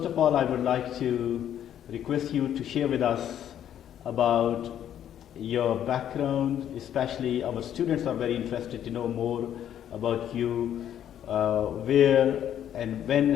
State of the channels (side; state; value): right; quieter; 10.3 dB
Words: of all, I would like to request you to share with us about your background, especially our students are very interested to know more about you, where and when